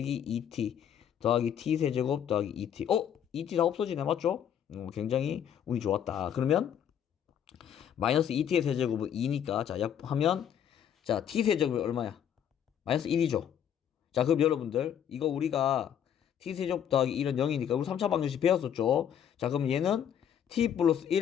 2t 더하기 t 세제곱 더하기 2t. 2t 다 없어지네. 맞죠? 굉장히 운이 좋았다. 그러면 마이너스 2t의 세제곱은 2니까 자, 약하면 자, t 세제곱이 얼마야? 마이너스 1이죠. 자, 그럼 여러분들 이거 우리가 t 세제곱 더하기 1은 0이니까 우리 3차 방정식 배웠었죠. 자, 그럼 얘는 t 플러스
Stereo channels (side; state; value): right; quieter; 9.1 dB